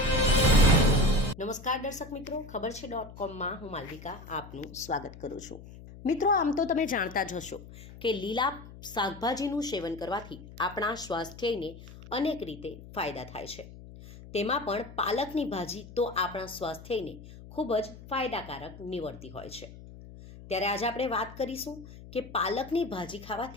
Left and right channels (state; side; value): noise; left; hum, 16 dB below the sound